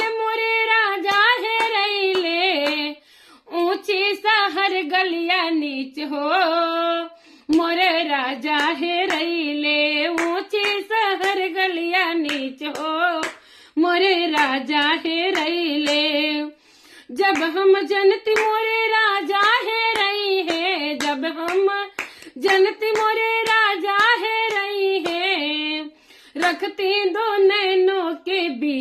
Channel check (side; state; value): both; identical; correlation 1.00